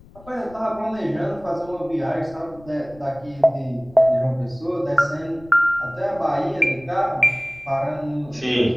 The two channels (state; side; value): noise; left; rumble, 23 dB below the sound